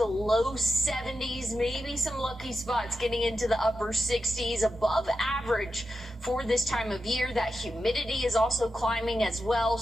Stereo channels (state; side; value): normal; both; correlation 0.88